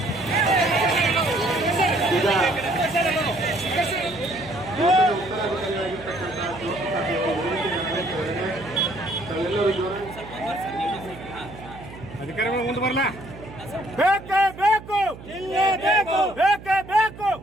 ಅಧಿಕಾರಿಗಳು ಮುಂದೆ ಬರಲ್ಲ. ಬೇಕೇ ಬೇಕು ಜಿಲ್ಲೆ ಬೇಕು, ಬೇಕೇ ಬೇಕು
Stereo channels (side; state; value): right; noise; hum, 16 dB below the sound